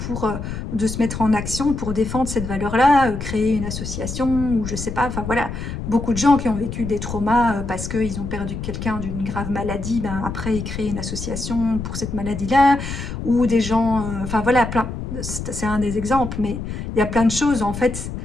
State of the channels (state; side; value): noise; left; rumble, 6 dB below the sound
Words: de se mettre en action pour défendre cette valeur-là, créer une association ou je sais pas, enfin voilà, beaucoup de gens qui ont vécu des traumas parce qu'ils ont perdu quelqu'un d'une grave maladie, ben, après ils créent une association pour cette maladie-là, ou des gens, enfin voilà, c'est un des exemples, mais il y a plein de choses, en fait,